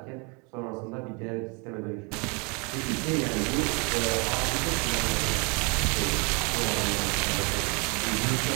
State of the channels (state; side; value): quieter; left; 31.8 dB